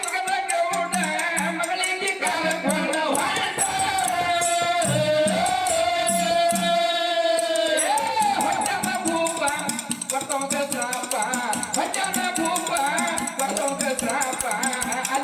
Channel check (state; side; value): identical; both; correlation 1.00